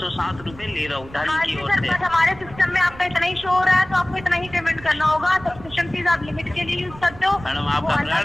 रुपए ले रहा हूँ हाँ की जी ओर सर, से। बस हमारे सिस्टम में आपका इतना ही शो हो रहा है, तो आपको इतना ही पेमेंट करना होगा। सब्सक्रिप्शन फीस आप लिमिट के लिए यूज करते हो। मैडम आपका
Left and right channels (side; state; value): right; noise; rumble, 18 dB below the sound